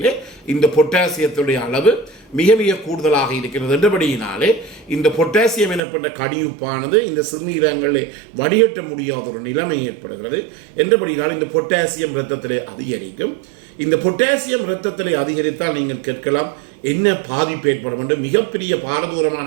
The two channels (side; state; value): left; drops out; at 5.8 s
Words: இந்த பொட்டாசியத்துடைய அளவு மிக மிக கூடுதலாக இருக்கிறது என்றபடியினாலே இந்த பொட்டாசியம் எனப்பட்ட கடியுப்பானது இந்த சிறுநீரகங்களை வடிகட்ட முடியாத ஒரு நிலைமை ஏற்படுகிறது என்றபடியினால் இந்த பொட்டாசியம் இரத்தத்திலே அதிகரிக்கும். இந்த பொட்டாசியம் இரத்தத்திலே அதிகரித்தால் நீங்கள் கேட்கலாம், என்ன பாதிப்பு ஏற்படும் என்று. மிகப்பெரிய பாரதூரமான